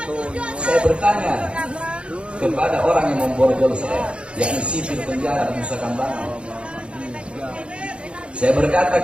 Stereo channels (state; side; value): late; left; 0.057 ms